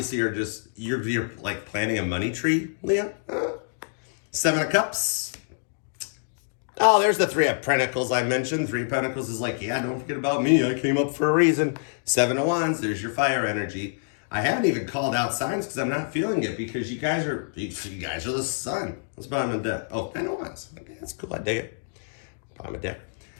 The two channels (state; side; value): silent; right; digital silence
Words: are just, you're like planting a money tree, Leo. Seven of Cups. Oh, there's the Three of Pentacles I mentioned. Three of Pentacles is like, yeah, don't forget about me. I came up for a reason. Seven of Wands, there's your fire energy. I haven't even called out signs because I'm not feeling it because you guys are the sun. That's bottom of the deck. Oh, 10 of Wands. Okay, that's cool. I dig it. Bottom of the deck.